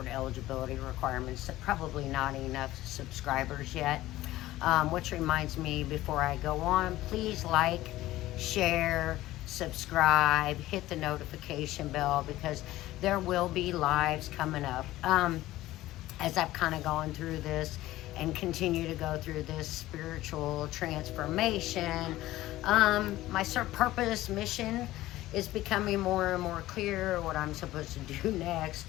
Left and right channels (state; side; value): quieter; right; 16.1 dB